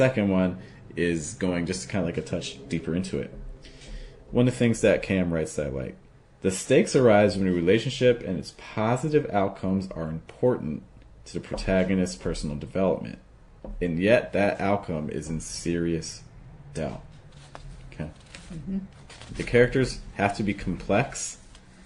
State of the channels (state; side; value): identical; both; correlation 1.00